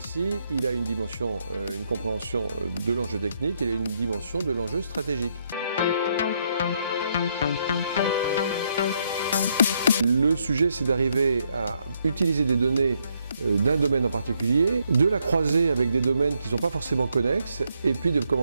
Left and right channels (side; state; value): both; inverted; correlation -0.75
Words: il a une dimension, une compréhension de l'enjeu technique, il a une dimension de l'enjeu stratégique. Le sujet, c'est d'arriver à utiliser des données d'un domaine en particulier, de la croiser avec des domaines qui ne sont pas forcément connexes, et puis de